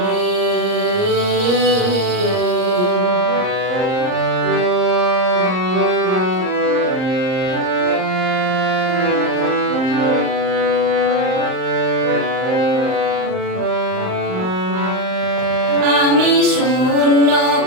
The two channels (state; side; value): late; left; 38 ms